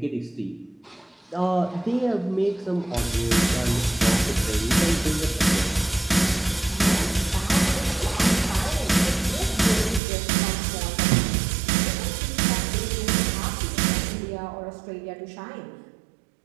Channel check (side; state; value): left; drops out; at 10.0 s